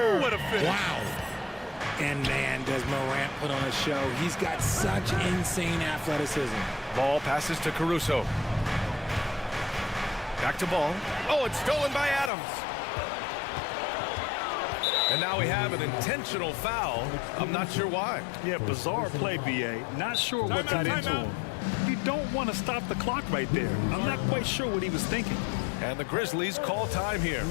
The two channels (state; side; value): drops out; right; at 12.3 s